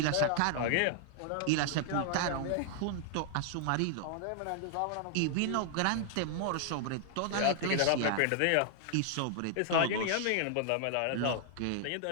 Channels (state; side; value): different; both; correlation 0.00